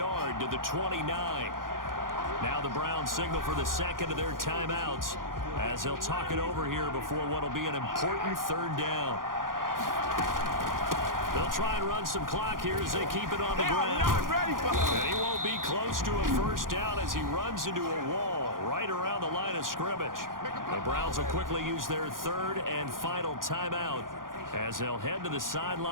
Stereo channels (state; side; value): late; left; 0.90 ms